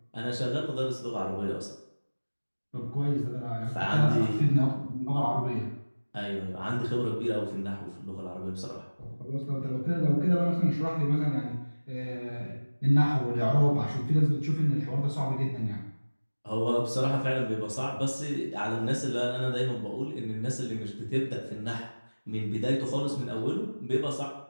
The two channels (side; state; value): both; inverted; correlation -1.00